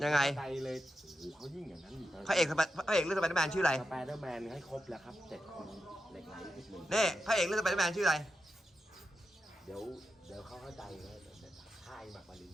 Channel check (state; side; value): normal; both; correlation 0.88